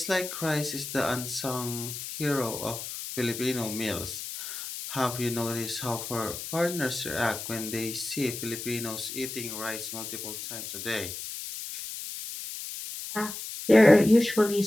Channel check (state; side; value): noise; left; hiss, 8 dB below the sound